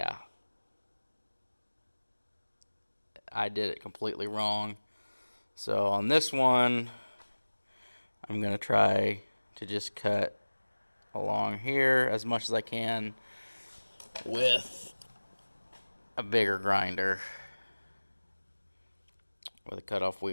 I did it completely wrong. So on this one, I'm gonna try to just cut along here as much as I can with a bigger grinder with a cutoff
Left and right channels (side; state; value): both; inverted; correlation -1.00